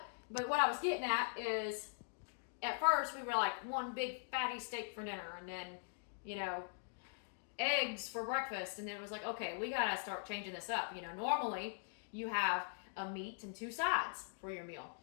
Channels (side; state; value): right; silent; digital silence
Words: But what I was getting at is, at first we were like one big fatty steak for dinner, and then eggs for breakfast, and then it was like, okay, we gotta start changing this up. Normally you have a meat and 2 sides for your meal.